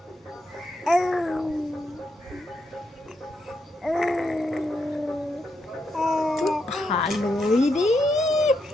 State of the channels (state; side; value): normal; both; correlation 0.81